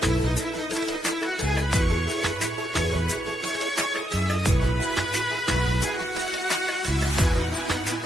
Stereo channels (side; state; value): both; normal; correlation 0.80